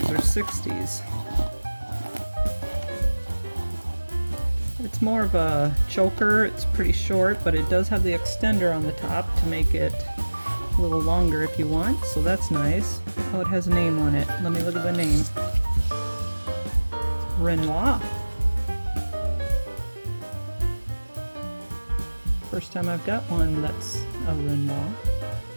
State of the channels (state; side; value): inverted; both; correlation -1.00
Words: or 60s. It's more of a choker. It's pretty short, but it does have the extender on the top to make it a little longer if you want, so that's nice. Oh, it has a name on it. Let me look at the name. Renoir. First time I've got one that's a Renoir.